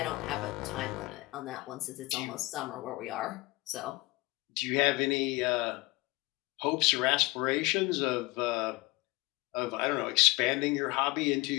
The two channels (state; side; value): quieter; right; 22.3 dB